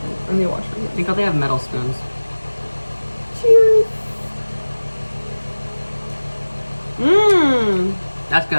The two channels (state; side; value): inverted; both; correlation -1.00